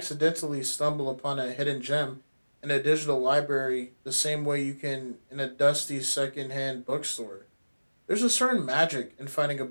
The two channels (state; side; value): inverted; both; correlation -1.00